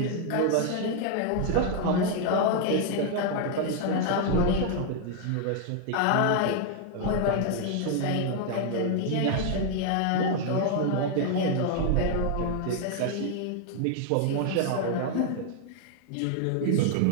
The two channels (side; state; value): both; different; correlation 0.00